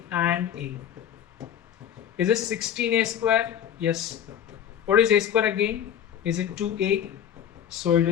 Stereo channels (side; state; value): right; quieter; 9.5 dB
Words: and a. Is it 16a square? Yes. What is a square again? Is it 2a? So it